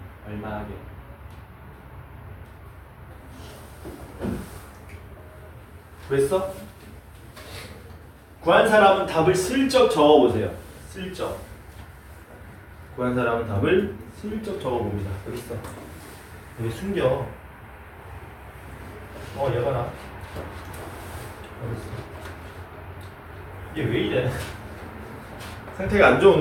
얼마하게? 구했어? 구한 사람은 답을 슬쩍 적어보세요. 슬쩍. 구한 사람은 답을 슬쩍 적어봅니다. 여기 있어. 여기 숨겨. 얘 봐라. 여기 있어. 얘 왜 이래? 상태가 안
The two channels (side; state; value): both; identical; correlation 1.00